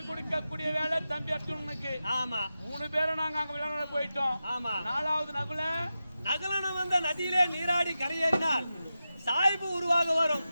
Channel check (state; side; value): inverted; both; correlation -0.92